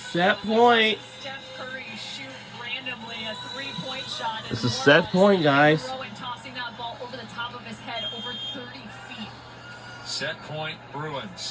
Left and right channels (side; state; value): both; identical; correlation 1.00